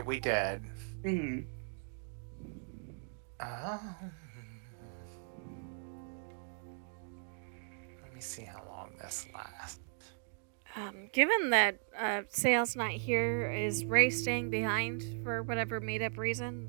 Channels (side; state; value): left; silent; 53 dB below the other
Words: We did. Mm. Let me see how long this lasts. Given that Sale's not here, is Ray staying behind for whatever made up reason,